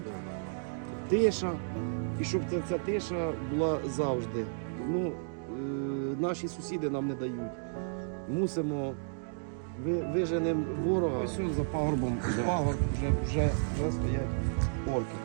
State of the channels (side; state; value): left; silent; digital silence